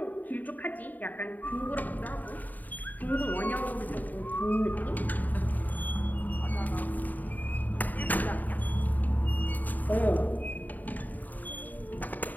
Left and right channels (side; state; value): right; late; 0.083 ms